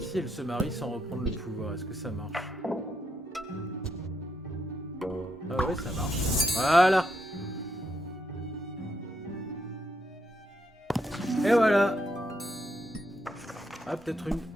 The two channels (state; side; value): normal; both; correlation 0.80